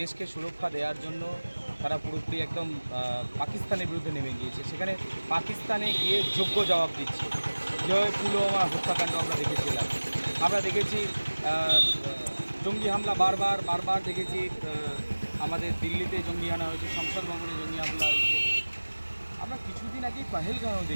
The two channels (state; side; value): inverted; both; correlation -1.00